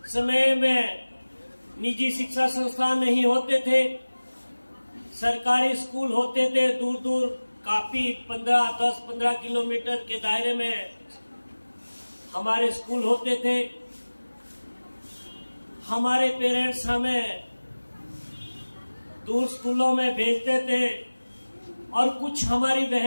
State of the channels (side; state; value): both; inverted; correlation -1.00